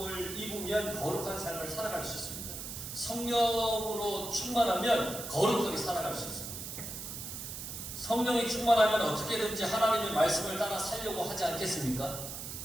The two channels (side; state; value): right; noise; hiss, 8 dB below the sound